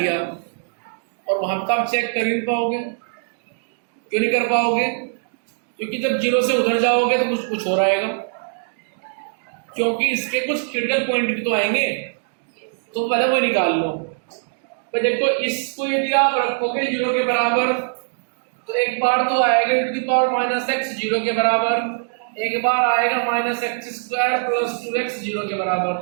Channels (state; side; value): silent; left; digital silence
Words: और वहां तक आप चेक कर ही नहीं पाओगे। क्यों नहीं कर पाओगे? क्योंकि जब 0 से उधर जाओगे तो कुछ हो रहेगा, क्योंकि इसके कुछ क्रिटिकल पॉइंट भी तो आएंगे, तो पहले वो निकाल लो। तो देखो, इसको यदि आप रखोगे 0 के बराबर, तो एक बार तो आएगा e to the power minus x 0 के बराबर, एक बार आएगा minus x square plus 2x 0 के बराबर।